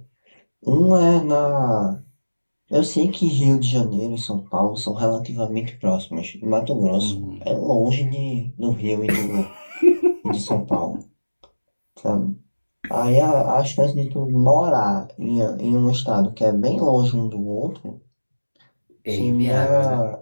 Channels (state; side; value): inverted; both; correlation -1.00